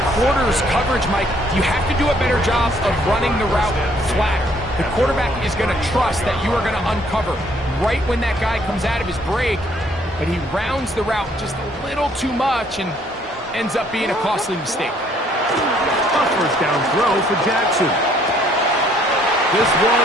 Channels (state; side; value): normal; both; correlation 0.64